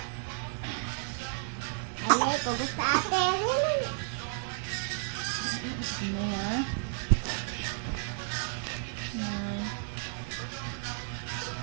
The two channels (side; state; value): left; silent; 56 dB below the other